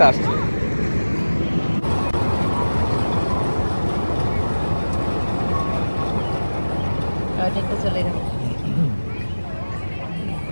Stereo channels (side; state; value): both; inverted; correlation -1.00